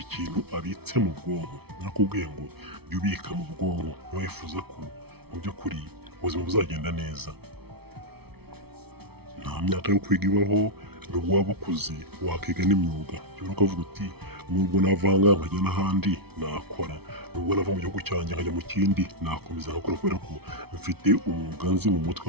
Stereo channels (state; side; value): late; left; 0.97 ms